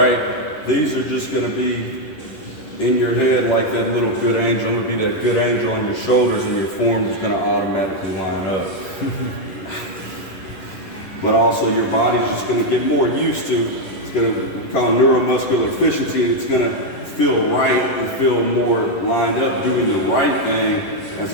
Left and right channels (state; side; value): late; right; 11 ms